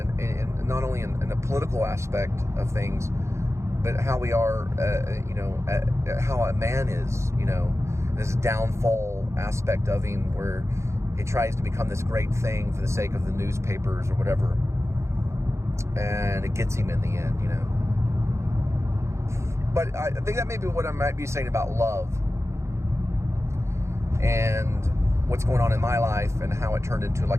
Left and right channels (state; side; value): late; left; 0.14 ms